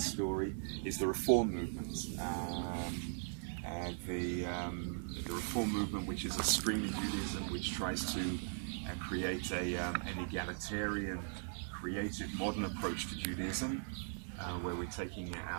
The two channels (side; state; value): left; silent; digital silence